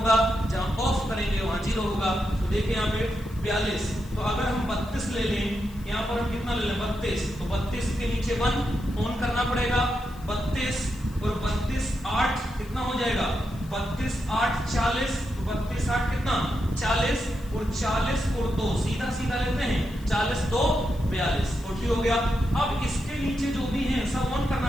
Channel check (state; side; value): noise; left; hiss, 24 dB below the sound